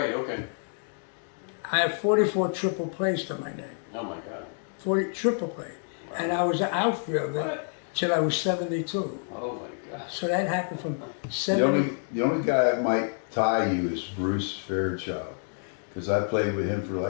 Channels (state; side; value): silent; right; 59 dB below the other